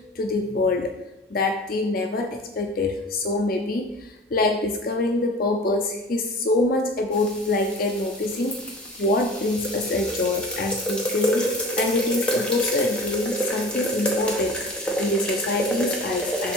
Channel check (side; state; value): both; normal; correlation 0.40